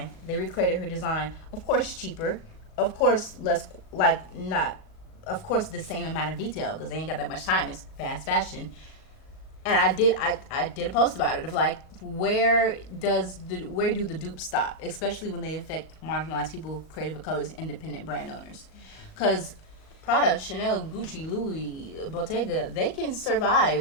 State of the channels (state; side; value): late; right; 38 ms